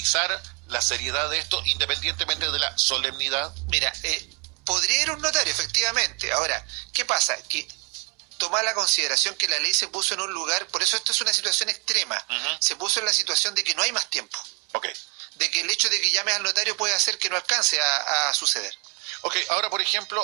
la seriedad de esto, independientemente de la solemnidad. Mira, podría ir un notario, efectivamente. Ahora, ¿qué pasa? Que toma la consideración que la ley se puso en un lugar, por eso esto es una situación extrema, se puso en la situación de que no hay más tiempo. De que el hecho de que llames al notario puede hacer que no alcance a suceder. Ahora, por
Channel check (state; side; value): quieter; left; 31.9 dB